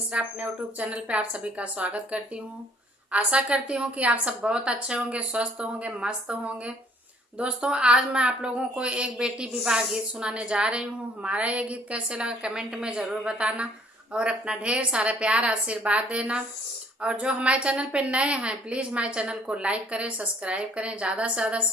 अपने यूट्यूब चैनल पे आप सभी का स्वागत करती हूँ। आशा करती हूँ कि आप सब बहुत अच्छे होंगे, स्वस्थ होंगे, मस्त होंगे। दोस्तों, आज मैं आप लोगों को एक बेटी विवाह गीत सुनाने जा रही हूँ। हमारा ये गीत कैसे लगा कमेंट में ज़रूर बताना और अपना ढेर सारा प्यार आशीर्वाद देना। और जो हमारे चैनल पे नए हैं, प्लीज़ हमारे चैनल को लाइक करें, सब्सक्राइब करें, ज़्यादा से ज़्यादा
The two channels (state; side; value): normal; both; correlation 0.60